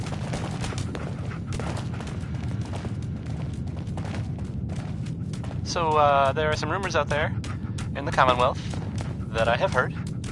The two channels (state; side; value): identical; both; correlation 1.00